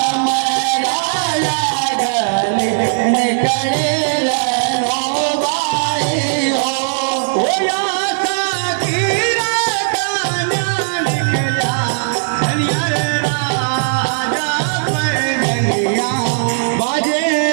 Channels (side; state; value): left; silent; digital silence